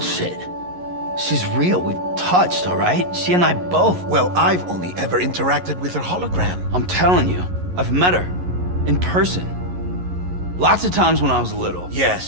She's real. We've touched, all right? She and I both. Well, I've only ever interacted with her hologram. I'm telling you, I've met her. In person. Lots of times when I was little.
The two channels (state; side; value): late; left; 11 ms